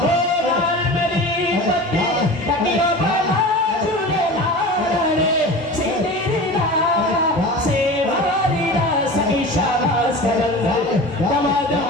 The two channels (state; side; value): normal; both; correlation 0.34